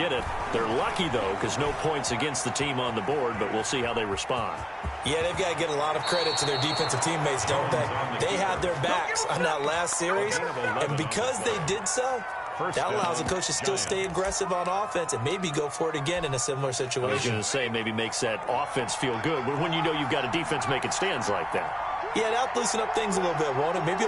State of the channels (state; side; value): identical; both; correlation 1.00